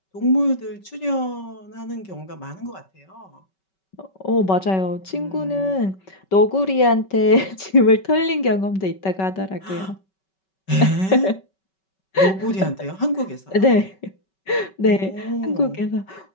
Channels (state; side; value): late; right; 5.3 ms